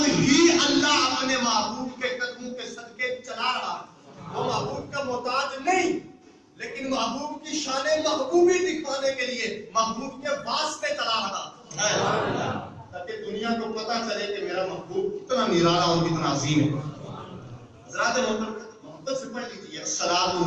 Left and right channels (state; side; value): identical; both; correlation 1.00